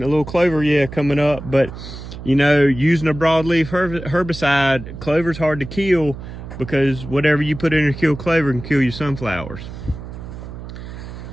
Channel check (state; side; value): noise; right; hum, 11 dB below the sound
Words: coming up, but you know, using a broadleaf herbicide, clover's hard to kill because whatever you put in to kill clover can kill your sunflowers.